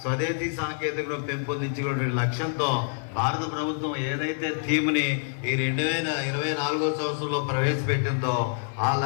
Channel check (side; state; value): right; silent; digital silence